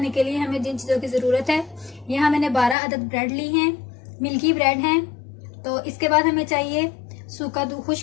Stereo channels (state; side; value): drops out; right; at 2.8 s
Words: के लिए हमें जिन चीज़ों की ज़रूरत है, यहाँ मैंने 12 अदद ब्रेड ली हैं, मिल्की ब्रेड हैं। तो इसके बाद हमें चाहिए सूखा